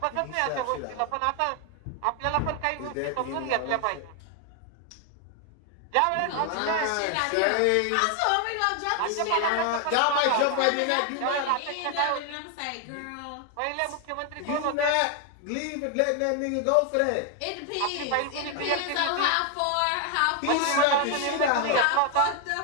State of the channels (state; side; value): different; both; correlation 0.00